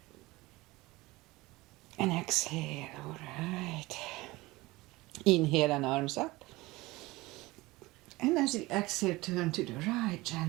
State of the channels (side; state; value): left; quieter; 20.8 dB